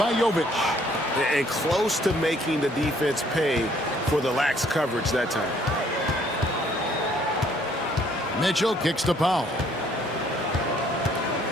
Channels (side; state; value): both; normal; correlation 0.63